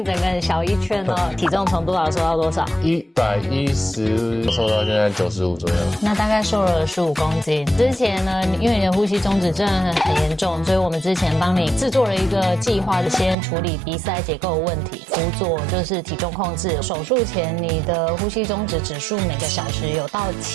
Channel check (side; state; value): left; drops out; at 13.4 s